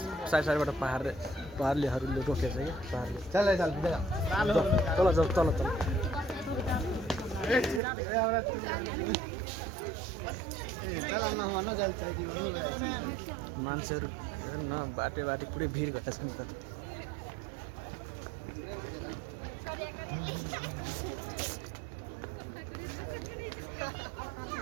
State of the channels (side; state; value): left; drops out; at 7.8 s